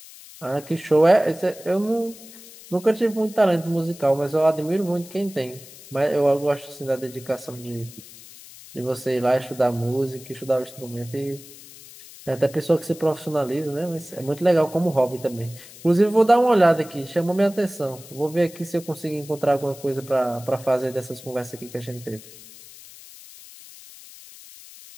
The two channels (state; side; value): noise; left; hiss, 19 dB below the sound